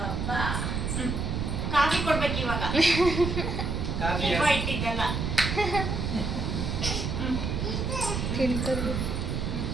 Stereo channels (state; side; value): noise; right; rumble, 1 dB below the sound